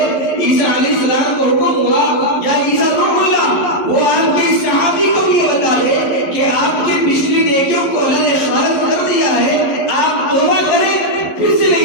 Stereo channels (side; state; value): right; late; 11 ms